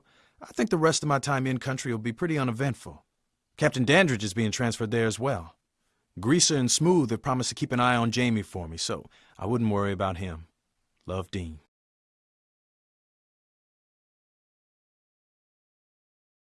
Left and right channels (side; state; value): both; identical; correlation 1.00